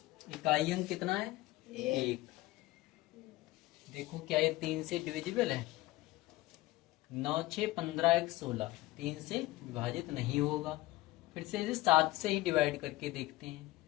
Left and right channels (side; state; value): right; quieter; 18.3 dB